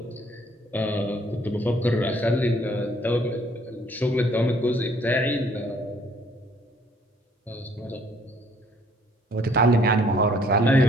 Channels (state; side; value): normal; both; correlation 0.61